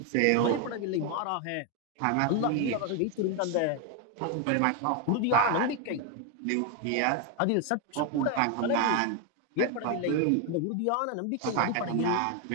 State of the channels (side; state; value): both; different; correlation 0.01